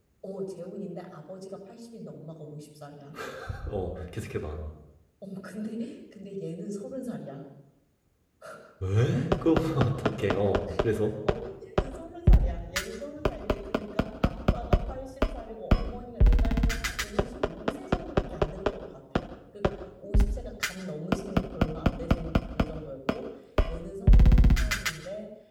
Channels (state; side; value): identical; both; correlation 1.00